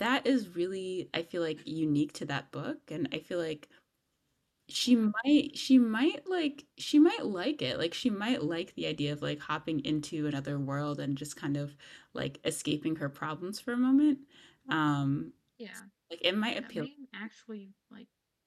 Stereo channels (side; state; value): both; identical; correlation 1.00